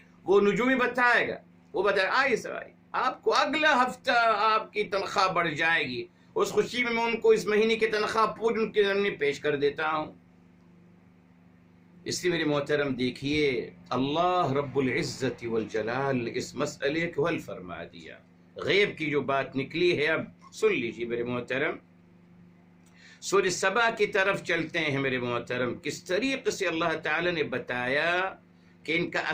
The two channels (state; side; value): identical; both; correlation 1.00